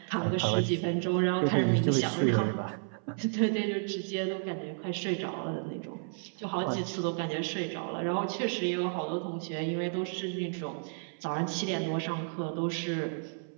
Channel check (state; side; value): silent; left; 57 dB below the other